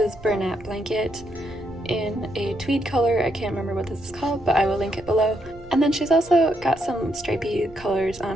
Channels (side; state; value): right; noise; rumble, 20 dB below the sound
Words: Bernat Blanket in a tweed color. I can't remember what this is called, but I will link it below. And then she's also got some stripy colors on